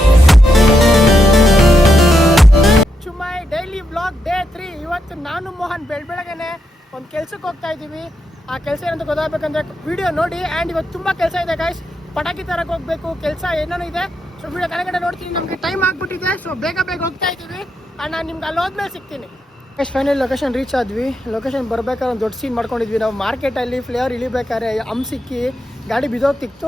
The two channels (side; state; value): both; normal; correlation 0.83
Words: to my daily vlog day 3. ಇವತ್ತು ನಾನು ಮೋಹನ್ ಬೆಳಗ್ಗೆನೆ ಒಂದು ಕೆಲ್ಸಕ್ಕೆ ಹೋಗ್ತಾ ಇದ್ದೀವಿ. ಆ ಕೆಲಸ ಏನಂತ ಗೊತ್ತಾಗಬೇಕಂದ್ರೆ ವಿಡಿಯೋ ನೋಡಿ. ಆ್ಯಂಡ್ ಇವತ್ತು ತುಂಬ ಕೆಲಸ ಇದೆ ಗಾಯ್ಸ್. ಪಟಾಕಿ ತರಕ್ಕೆ ಹೋಗ್ಬೇಕು, ಕೆಲಸ ಏನೇನೋ ಇದೆ. ಸೊ ವಿಡಿಯೋ ಕಡೆಗಡೆ ನೋಡ್ತೀನಿ. ನಮಗೆ ಟೈಮ್ ಆಗ್ಬಿಟ್ಟಿದೆ, ಸೊ ಬೇಗ ಹೋಗ್ತಾ ಇದ್ದೀವಿ. ಆ್ಯಂಡ್ ನಾನು ನಿಮ್ಗೆ ಅಲ್ಲಿ ಹೋದ್ಮೇಲೆ ಸಿಗ್ತೀನಿ. ಫೈನಲ್ ಲೊಕೇಶನ್ ರೀಚ್ ಆದ್ವಿ. ಲೊಕೇಶನ್ ಬರ್ಬೇಕಾದ್ರೆ ಒಂದು ದೊಡ್ಡ ಸೀನ್ ಮಾಡ್ಕೊಂಡಿದ್ವಿ ನಾವು. ಮಾರ್ಕೆಟಲ್ಲಿ ಫ್ಲೇವರ್ ಇಳಿಬೇಕಾದ್ರೆ ಸಿಕ್ಕಿ ಗಾಡಿ